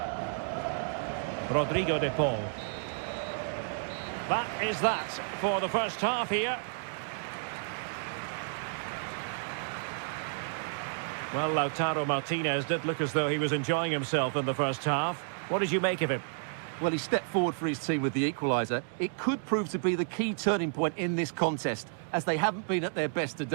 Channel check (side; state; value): left; silent; digital silence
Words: Rodrigo de Paul. That is that for the first half here. Well, Lautaro Martinez did look as though he was enjoying himself in the first half. What did you make of him? Well, he stepped forward for his team with the equaliser. It could prove to be the key turning point in this contest, as they haven't been at their best